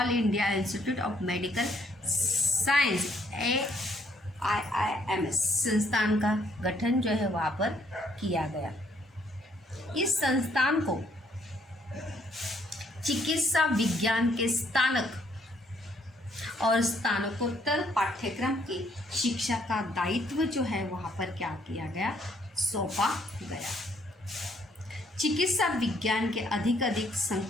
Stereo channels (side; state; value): both; normal; correlation 0.68